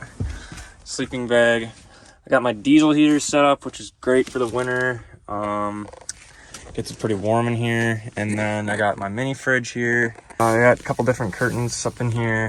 Sleeping bag. I got my diesel heater set up, which is great for the winter. Gets it pretty warm in here. And then I got my mini fridge here. I got a couple different curtains up in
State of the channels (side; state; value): both; identical; correlation 1.00